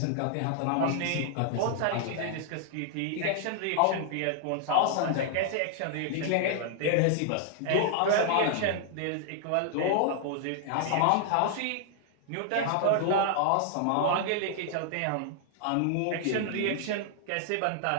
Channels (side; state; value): both; different; correlation -0.01